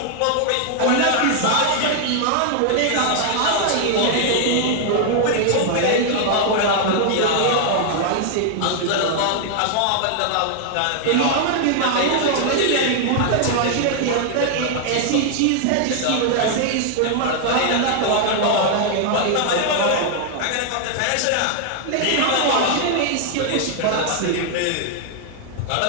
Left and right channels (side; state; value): both; different; correlation 0.00